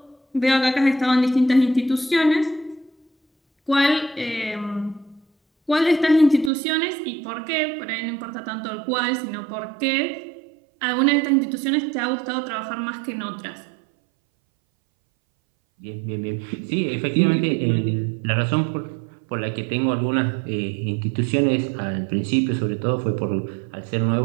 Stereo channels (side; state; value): left; drops out; at 6.5 s